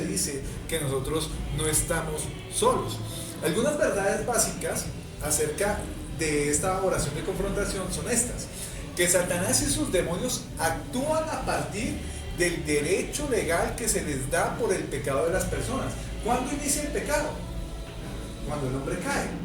dice que nosotros no estamos solos. Algunas verdades básicas acerca de esta oración de confrontación son estas: que Satanás y sus demonios actúan a partir del derecho legal que se les da por el pecado de las personas. ¿Cuándo inicia el pecado? Cuando el hombre cae,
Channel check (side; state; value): both; identical; correlation 1.00